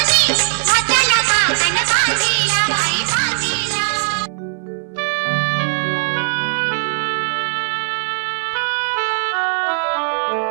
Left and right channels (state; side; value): silent; left; digital silence